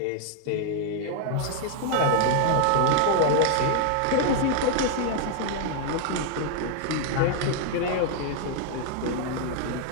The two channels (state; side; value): different; both; correlation 0.00